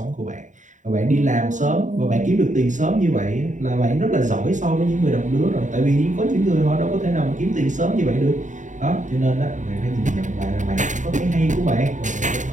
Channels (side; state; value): left; late; 0.36 ms